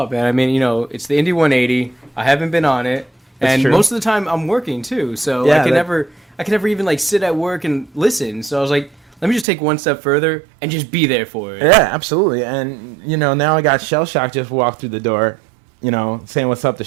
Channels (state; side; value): drops out; left; at 9.5 s